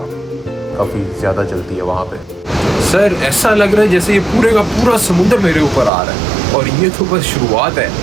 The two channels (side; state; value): left; drops out; at 5.9 s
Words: काफ़ी ज़्यादा चलती है वहाँ पे। सर ऐसा लग रहा है जैसे ये पूरे का पूरा समुद्र मेरे ऊपर आ रहा है, और ये तो बस शुरुआत है।